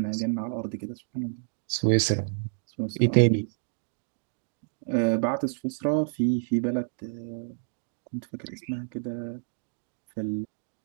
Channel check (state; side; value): silent; left; digital silence